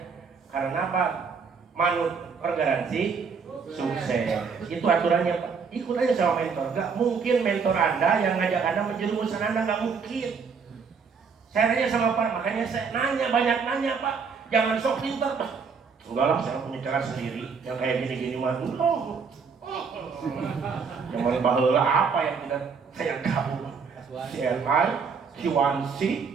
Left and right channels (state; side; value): quieter; left; 5.6 dB